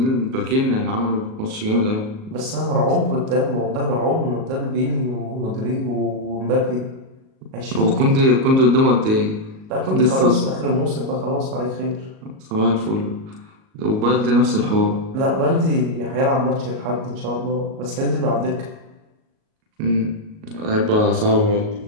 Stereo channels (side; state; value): left; late; 38 ms